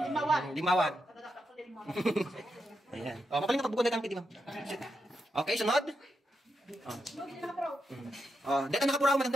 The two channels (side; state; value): both; normal; correlation 0.84